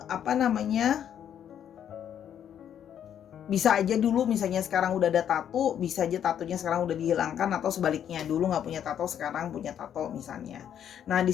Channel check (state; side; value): quieter; right; 9.4 dB